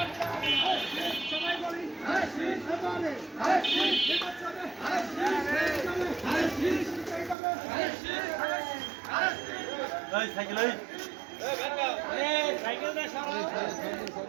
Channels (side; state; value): left; drops out; at 7.4 s